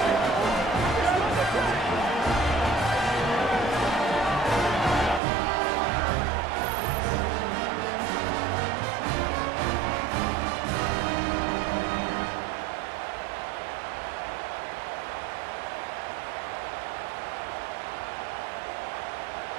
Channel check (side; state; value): left; drops out; at 5.2 s